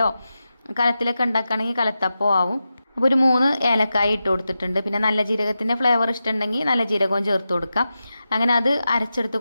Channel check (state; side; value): inverted; both; correlation -0.91